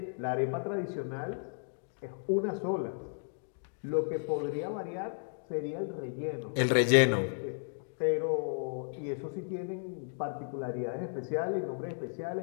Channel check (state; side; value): silent; right; digital silence